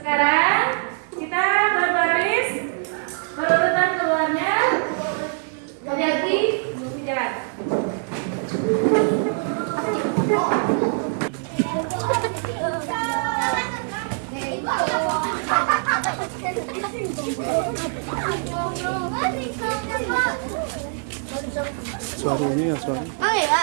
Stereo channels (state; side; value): silent; left; 60 dB below the other